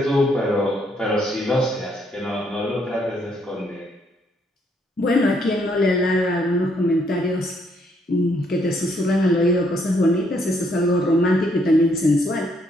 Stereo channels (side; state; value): both; normal; correlation 0.71